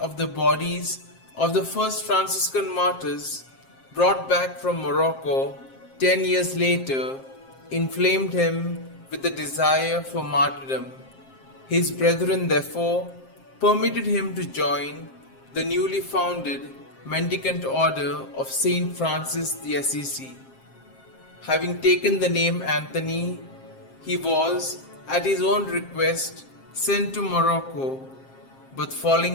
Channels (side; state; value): right; late; 7.5 ms